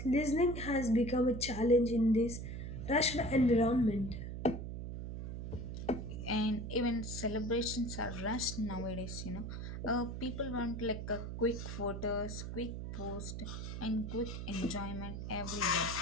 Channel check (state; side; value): noise; right; hum, 6 dB below the sound